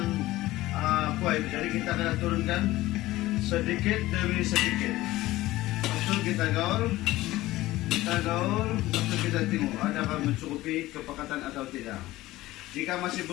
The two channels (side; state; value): right; quieter; 17.2 dB